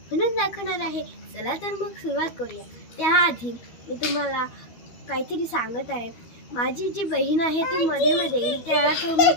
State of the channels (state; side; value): late; right; 13 ms